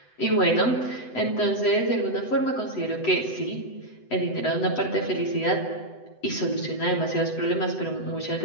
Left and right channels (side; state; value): right; late; 7.9 ms